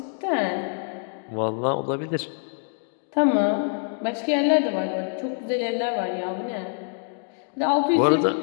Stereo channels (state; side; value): silent; right; 62 dB below the other